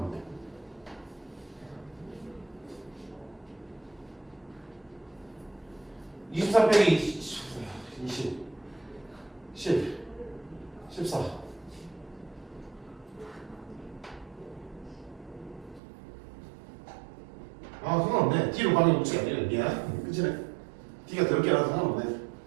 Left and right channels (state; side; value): drops out; left; at 15.8 s